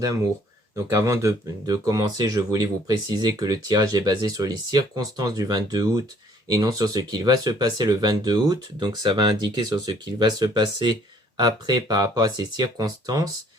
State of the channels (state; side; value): normal; both; correlation 0.60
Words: Donc avant de commencer, je voulais vous préciser que le tirage est basé sur les circonstances du 22 août et non sur ce qu'il va se passer le 22 août. Donc ça va indiquer sur ce qu'il va se passer après par rapport à ces circonstances.